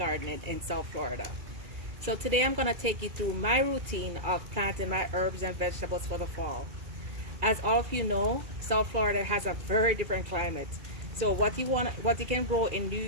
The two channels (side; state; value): left; late; 2.3 ms